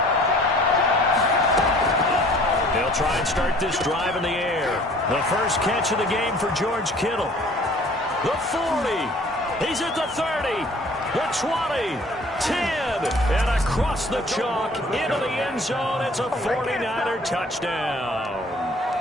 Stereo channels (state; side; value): normal; both; correlation 0.53